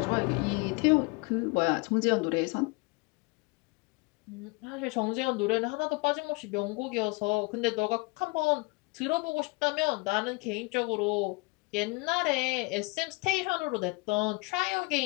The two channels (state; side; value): quieter; right; 27.1 dB